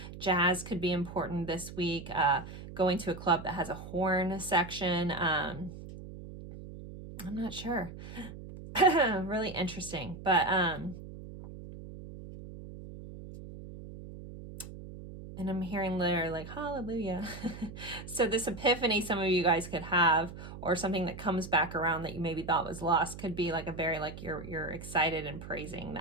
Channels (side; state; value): right; noise; hum, 12 dB below the sound